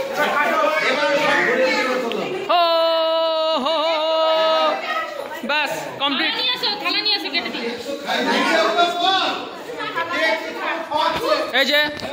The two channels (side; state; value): both; identical; correlation 1.00